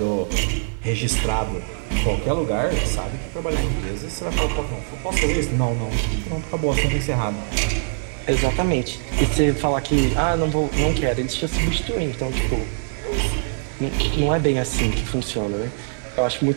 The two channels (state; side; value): silent; left; digital silence